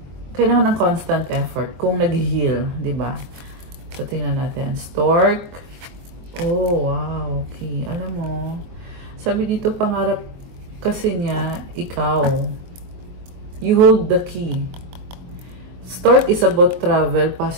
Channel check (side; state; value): left; late; 23 ms